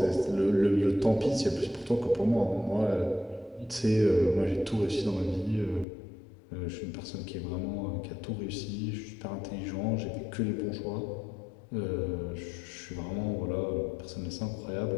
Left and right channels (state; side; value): drops out; right; at 5.9 s